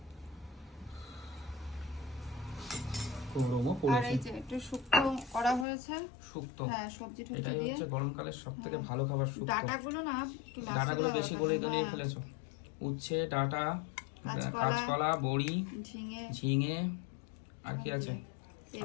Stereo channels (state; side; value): drops out; right; at 5.7 s